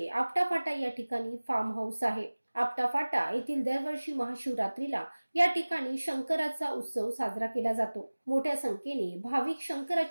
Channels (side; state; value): both; inverted; correlation -1.00